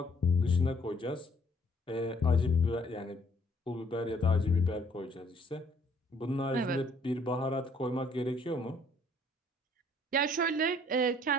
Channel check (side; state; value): both; normal; correlation 0.63